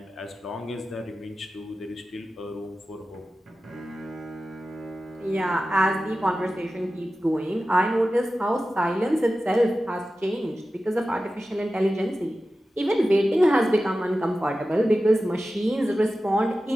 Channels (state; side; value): normal; both; correlation 0.94